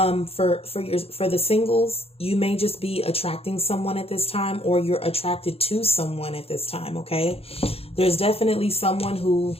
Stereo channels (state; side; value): late; right; 0.28 ms